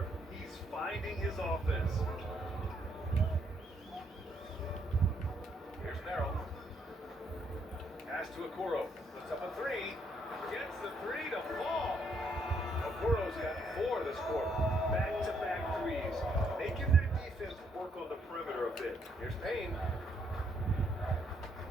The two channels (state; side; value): normal; both; correlation 0.72